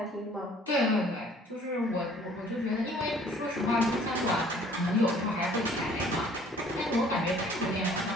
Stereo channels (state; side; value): normal; both; correlation 0.55